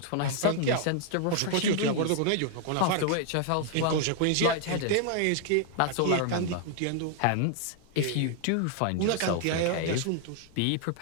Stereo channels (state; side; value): different; both; correlation 0.00